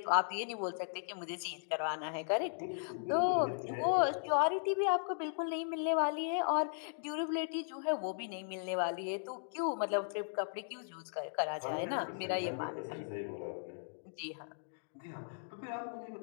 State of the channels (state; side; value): silent; right; digital silence